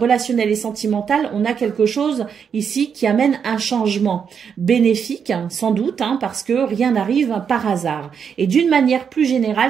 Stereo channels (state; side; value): quieter; left; 7.0 dB